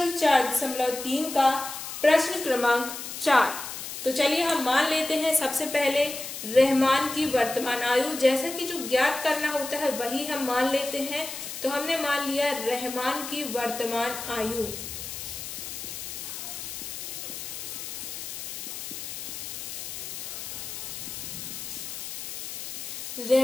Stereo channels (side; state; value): left; noise; hiss, 8 dB below the sound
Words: 4.3 का प्रश्न क्रमांक 4। तो चलिए हम मान लेते हैं सबसे पहले रहमान की वर्तमान आयु, जैसा कि जो ज्ञात करना होता है वही हम मान लेते हैं। तो हमने मान लिया रहमान की वर्तमान आयु।